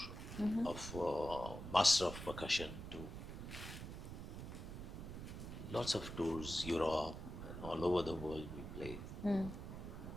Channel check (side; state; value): right; noise; rumble, 8 dB below the sound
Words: of Master of Percussion to lots of tours, Europe and all over the world we played.